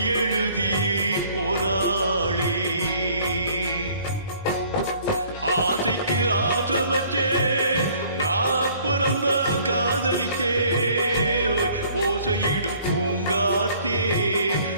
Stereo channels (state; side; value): inverted; both; correlation -0.56